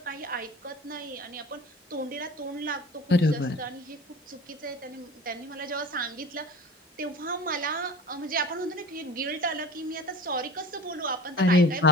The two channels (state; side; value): normal; both; correlation 0.36